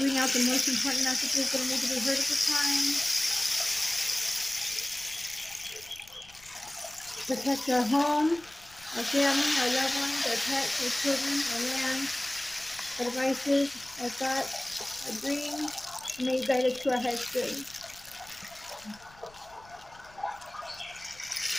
out the most important messages that need to be heard at this time. Protect our home, our family, our loved ones, our pets, our children, our land, our devices, our thoughts, our dreams. May you guide us to our highest good.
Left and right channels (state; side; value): noise; left; rumble, 25 dB below the sound